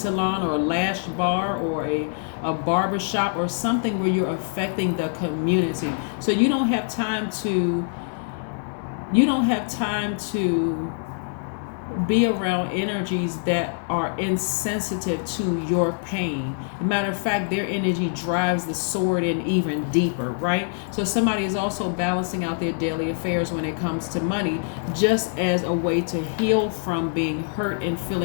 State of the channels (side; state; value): right; silent; 59 dB below the other